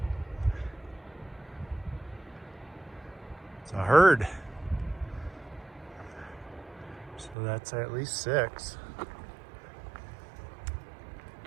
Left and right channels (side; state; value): left; drops out; at 7.4 s